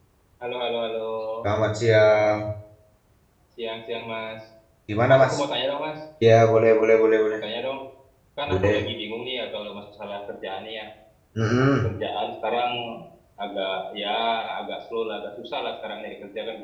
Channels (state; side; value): identical; both; correlation 1.00